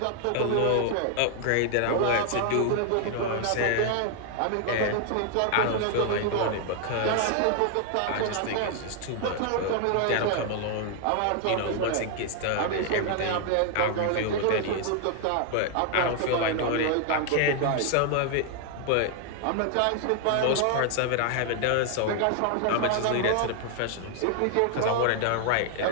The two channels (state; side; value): different; both; correlation 0.00